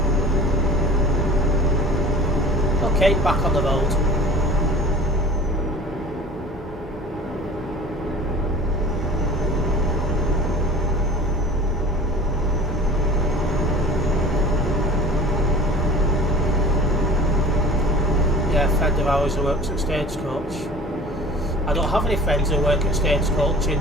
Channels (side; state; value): both; normal; correlation 0.42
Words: Okay, back on the road. Yeah, a friend of ours who works at Stagecoach. I don't have any friends who work at Stagecoach in